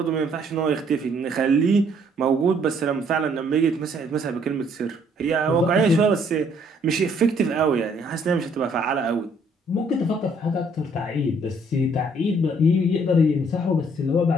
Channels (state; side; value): normal; both; correlation 0.64